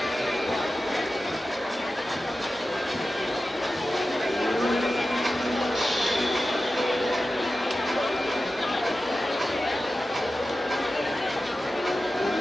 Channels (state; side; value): normal; both; correlation 0.94